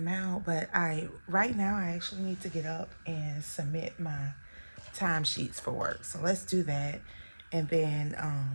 out. But right now I actually need to get up and submit my timesheets for work. So let's do that. And then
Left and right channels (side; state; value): both; inverted; correlation -1.00